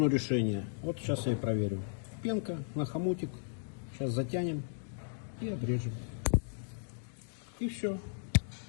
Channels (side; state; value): right; silent; digital silence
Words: решение. Вот сейчас я и проверю. Пенка на хомутик. Сейчас затянем и обрежем. И все.